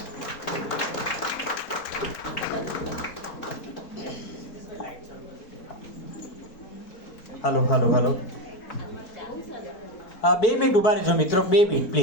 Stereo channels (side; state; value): right; late; 4.6 ms